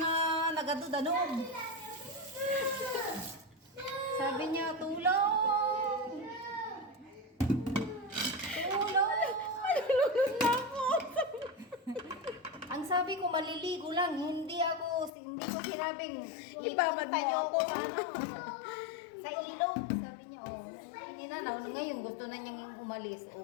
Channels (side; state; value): right; drops out; at 15.1 s